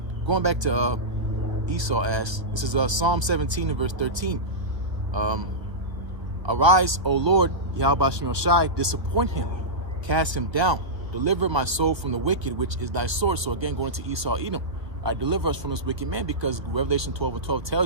going back to Esau asked. This is Psalm 17 and verse 13. Arise, O Lord, Yahweh Shem Shai, disappoint him, cast him down, deliver my soul from the wicked, which is thy sword. So again, going to Esau, Edom, deliver us from this wicked man, because Revelation 12 and 12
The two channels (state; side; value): late; left; 1.3 ms